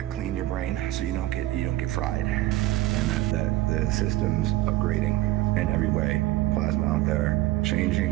clean your brain so you don't get fried, and that the system's upgrading in every way. Plasma out there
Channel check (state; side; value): quieter; left; 16.5 dB